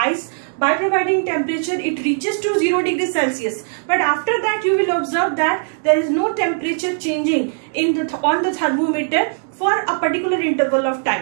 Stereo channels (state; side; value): silent; left; 66 dB below the other